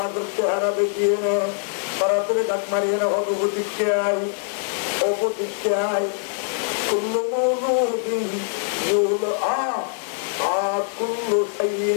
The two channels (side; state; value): right; silent; digital silence